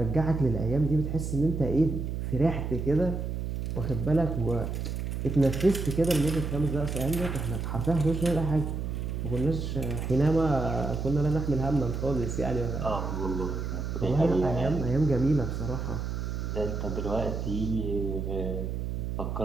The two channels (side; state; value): right; noise; hum, 3 dB below the sound